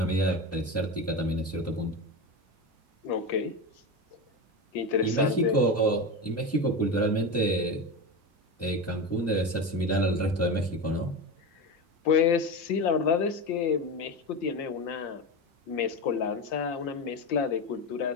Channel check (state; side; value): normal; both; correlation 0.21